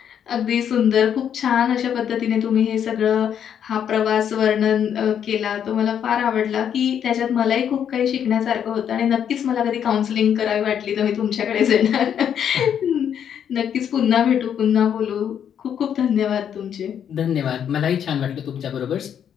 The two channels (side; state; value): right; quieter; 8.8 dB